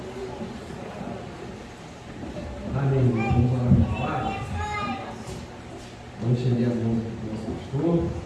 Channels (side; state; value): both; identical; correlation 1.00